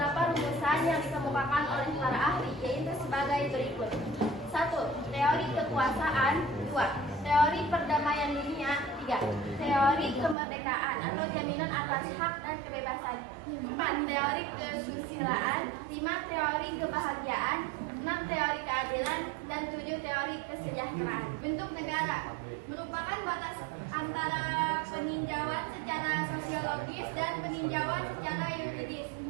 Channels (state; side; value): drops out; left; at 10.4 s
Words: rumusan yang dikemukakan oleh para ahli, yaitu sebagai berikut. 1. Teori kekuasaan. 2. Teori perdamaian dunia. 3. Teori teori kemerdekaan atau jaminan atas hak dan kebebasan. 4. Teori kesusilaan. 5. Teori kebahagiaan. 6. Teori keadilan. Dan 7. Teori kesejahteraan. Bentuk negara merupakan batas antara peninjauan secara sosiologis dan peninjauan secara yuridis